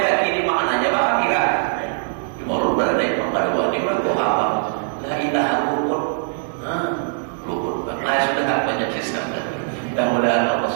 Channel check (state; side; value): silent; left; digital silence